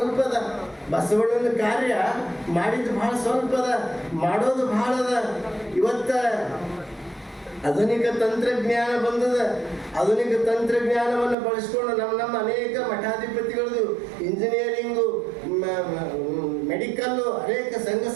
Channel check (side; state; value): left; drops out; at 11.4 s